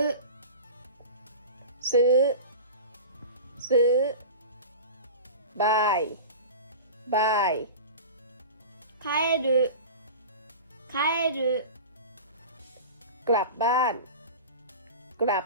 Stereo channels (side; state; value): both; inverted; correlation -0.33